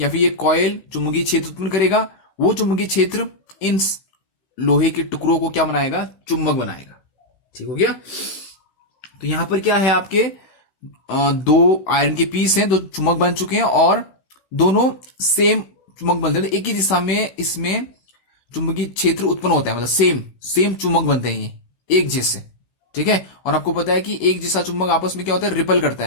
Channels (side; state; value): right; late; 16 ms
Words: फिर ये कॉइल चुंबकीय क्षेत्र उत्पन्न करेगा। वो चुंबकीय क्षेत्र इन लोहे के टुकड़ों को क्या बनाएगा, चुंबक बनाएगा। ठीक हो गया। तो यहां पर क्या है, आपके दो आयरन के पीस हैं, दो चुंबक बन चुके हैं, और दोनों सेम चुंबक बनते हैं। तो एक ही दिशा में इसमें चुंबकीय क्षेत्र उत्पन्न होता है, मतलब सेम चुंबक बनते हैं ये एक जैसे। ठीक है, और आपको पता है कि एक जैसा चुंबक आपस में क्या होता है, रिपल करता